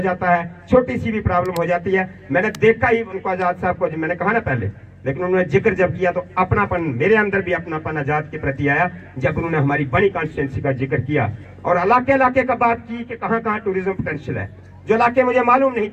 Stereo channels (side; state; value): both; identical; correlation 1.00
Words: जाता है, छोटी सी भी प्रॉब्लम हो जाती है। मैंने देखा ही उनको, आजाद साहब को, मैंने कहा ना पहले, लेकिन उन्होंने जिक्र जब किया तो अपनापन, मेरे अंदर भी अपनापन आजाद के प्रति आया जब उन्होंने हमारी बड़ी कॉन्स्टिट्यूंसी का जिक्र किया और इलाके इलाके का बात की कि कहाँ कहाँ टूरिज्म पोटेंशियल है, जो इलाके मुझे मालूम नहीं